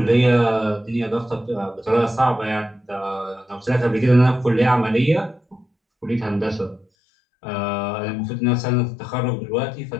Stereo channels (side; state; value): right; drops out; at 6.9 s